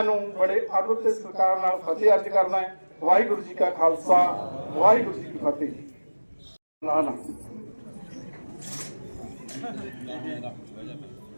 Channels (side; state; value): both; inverted; correlation -1.00